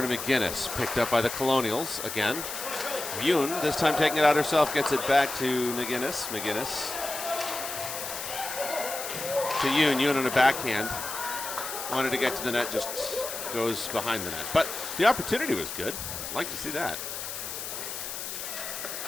McGinnis. Picked up by the Colonials again. Yoon, this time taking it out herself, gets it back to McGinnis. McGinnis to Yoon. Yoon on a backhand. Wanted to get to the net, just goes behind the net. But the opportunity was good. Like to see that.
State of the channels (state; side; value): noise; left; hiss, 6 dB below the sound